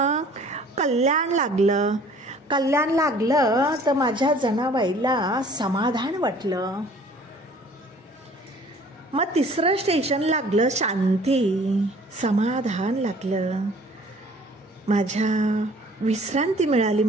कल्याण लागलं. कल्याण लागलं तर माझ्या जनाबाईला समाधान वाटलं. मग तिसरं स्टेशन लागलं शांती, समाधान लागलं. माझ्या विश्रांती मिळाली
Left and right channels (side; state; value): both; normal; correlation 0.52